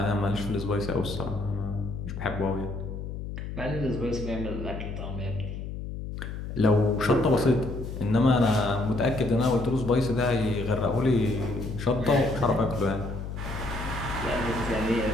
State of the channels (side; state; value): left; noise; hum, 7 dB below the sound